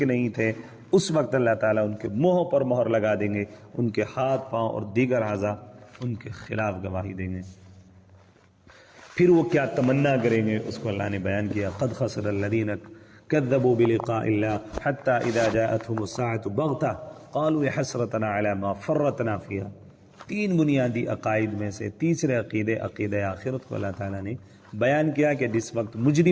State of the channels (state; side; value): identical; both; correlation 1.00